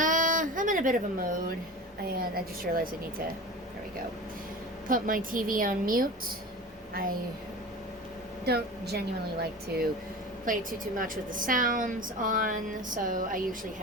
in a bit of a mood, and I just realized I need to, there we go, put my TV on mute. I don't genuinely like to play too much with the sounds on, so I usually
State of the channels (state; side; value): normal; both; correlation 0.33